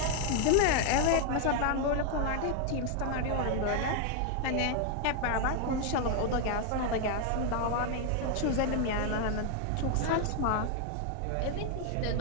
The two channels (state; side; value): different; both; correlation 0.00